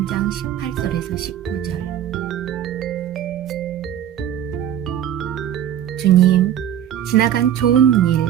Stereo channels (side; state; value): left; quieter; 10.6 dB